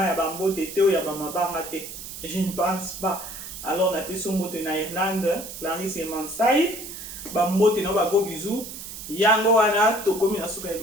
ya ba mbote te ou ya ba mabanga te. Je ne pense pas. Alors na peso mbote na Irlande, Clarisse Yemansai. Ba mbote na ba gros bisous. Yango wana tokomi na souka ya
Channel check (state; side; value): noise; right; hiss, 10 dB below the sound